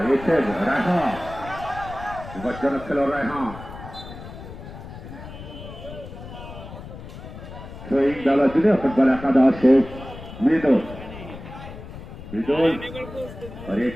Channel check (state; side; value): noise; left; rumble, 13 dB below the sound